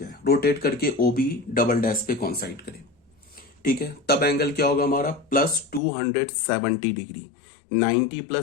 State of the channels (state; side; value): drops out; right; at 5.8 s